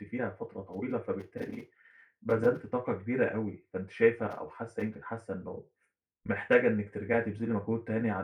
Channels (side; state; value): both; identical; correlation 1.00